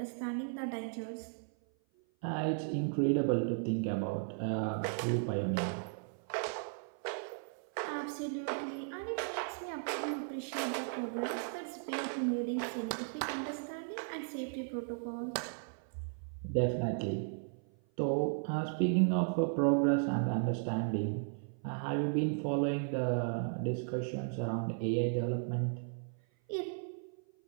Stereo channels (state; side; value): silent; left; 54 dB below the other